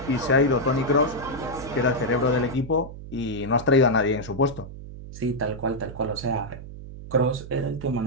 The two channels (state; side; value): noise; right; hum, 13 dB below the sound